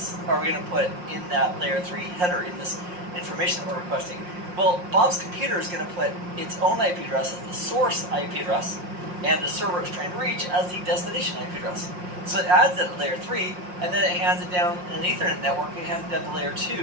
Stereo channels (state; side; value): late; left; 5.6 ms